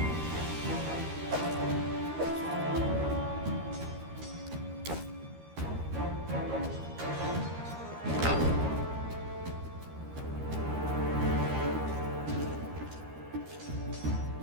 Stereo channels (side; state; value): left; late; 13 ms